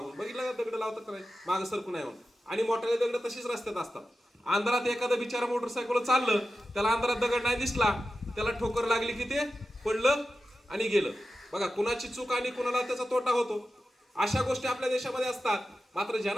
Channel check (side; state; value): both; normal; correlation 0.92